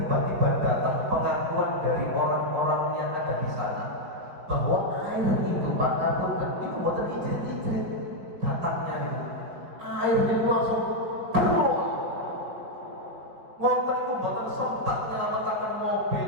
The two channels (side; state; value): left; late; 5.2 ms